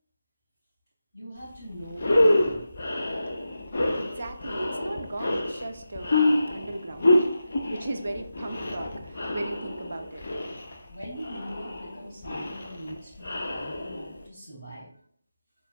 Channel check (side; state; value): both; inverted; correlation -0.90